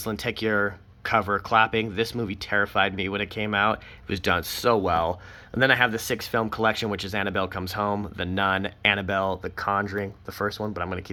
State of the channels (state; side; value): identical; both; correlation 1.00